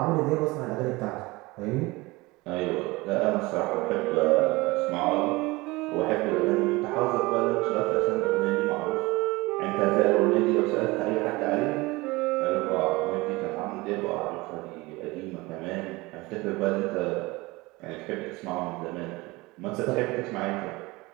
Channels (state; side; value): quieter; left; 22.3 dB